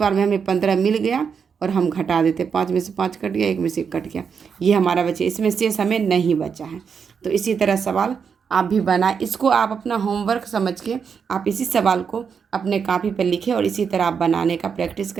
में हमें 15 मिल गया। और हम घटा देते, 5 में से 5 कट गया, 1 में से 1 कट गया। ये हमारा बचे, इसमें शेष हमें नहीं बचा है। तो इसी तरह सवाल आप भी बनाए। इसको आप अपना होमवर्क समझ के आप इसी सवाल को अपने कॉपी पर लिखें, और इसी तरह आप बनाने का प्रैक्टिस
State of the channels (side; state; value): left; quieter; 6.4 dB